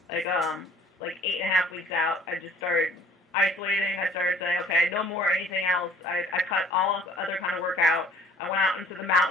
8.5 weeks out. I just started isolating. I started saying, okay, no more anything else. I cut all other kind of work out. I went out into the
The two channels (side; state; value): both; normal; correlation 0.53